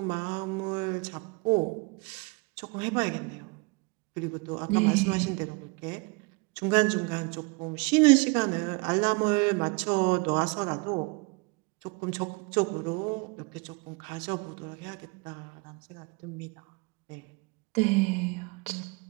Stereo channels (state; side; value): quieter; left; 29.2 dB